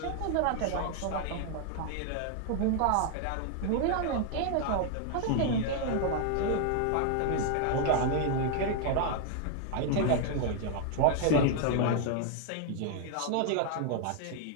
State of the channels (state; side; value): different; both; correlation 0.00